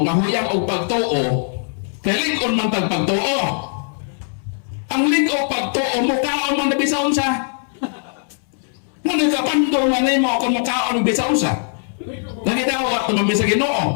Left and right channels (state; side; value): silent; right; digital silence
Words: nga huyang o pagtuo kay lig-on man tag pagtuo. Ang lig o pagtuo mukaon man na bisaon sa. Nga nagkapandol man nimo kung mukaon bisaon sa. Nagidawat naman sa